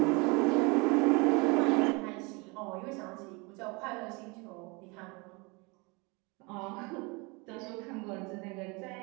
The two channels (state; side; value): quieter; left; 28.2 dB